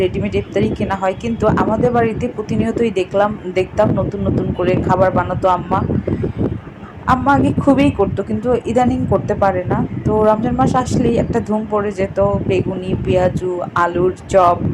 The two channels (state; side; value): identical; both; correlation 1.00